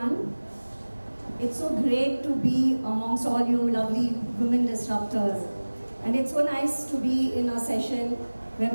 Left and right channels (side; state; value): both; inverted; correlation -1.00